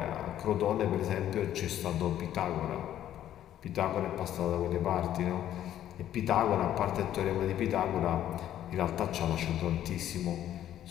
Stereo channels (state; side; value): quieter; right; 11.6 dB